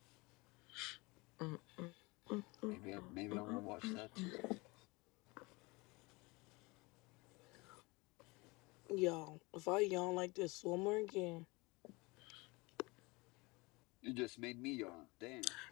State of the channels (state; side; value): quieter; right; 24.9 dB